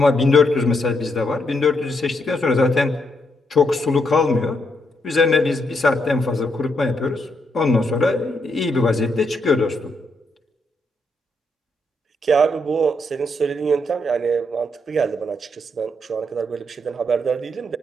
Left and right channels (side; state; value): both; normal; correlation 0.78